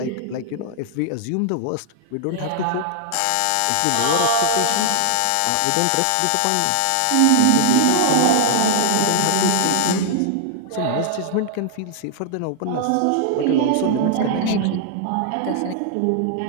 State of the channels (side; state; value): both; different; correlation 0.00